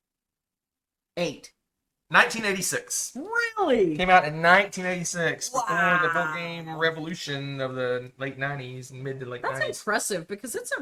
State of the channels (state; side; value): identical; both; correlation 1.00